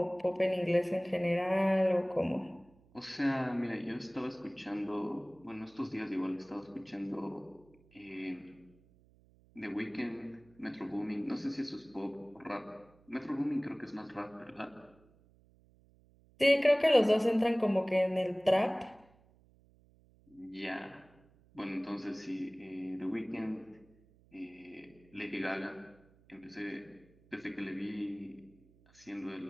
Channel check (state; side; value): noise; right; hum, 29 dB below the sound